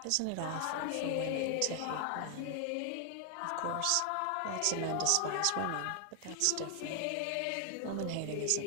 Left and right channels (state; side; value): different; both; correlation 0.00